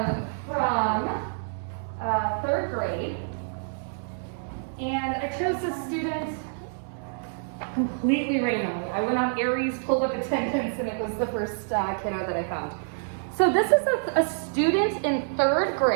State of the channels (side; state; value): left; silent; 60 dB below the other